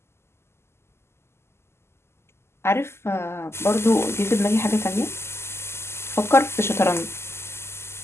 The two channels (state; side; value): late; right; 0.12 ms